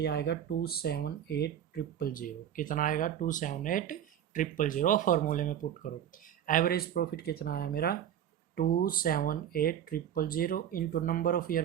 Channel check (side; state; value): left; quieter; 10.0 dB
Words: आएगा 278,000। कितना आएगा? 278,000। फॉर्मूले में पुट करो। एवरेज प्रॉफिट कितना आया मेरा? 278,000 into number of